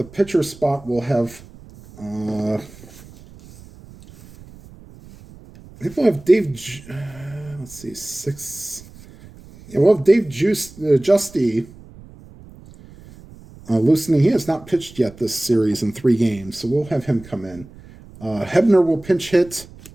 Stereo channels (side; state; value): right; noise; rumble, 21 dB below the sound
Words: pitcher spot. We'll have I think we'll have Dave, let's see, 6. Yeah, we'll have Dave Justy loosening. He has not pitched yet this series in 3 games, so we'll have him come in. Hebner will pinch hit.